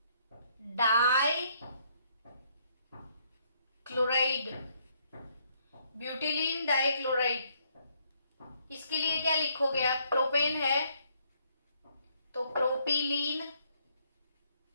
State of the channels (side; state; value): both; inverted; correlation -0.69